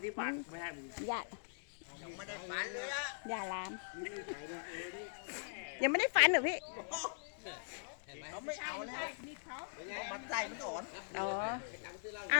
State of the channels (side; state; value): right; silent; digital silence